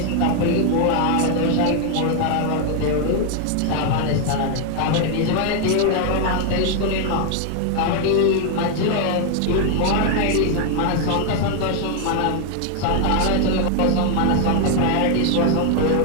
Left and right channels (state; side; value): different; both; correlation 0.00